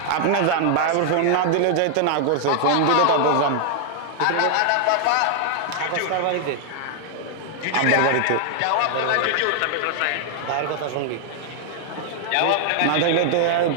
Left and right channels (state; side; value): different; both; correlation 0.00